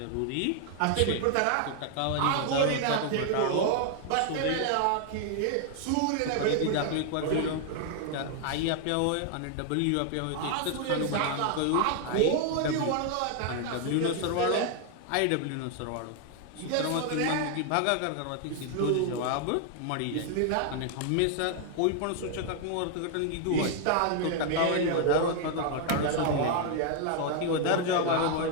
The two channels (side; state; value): both; different; correlation 0.00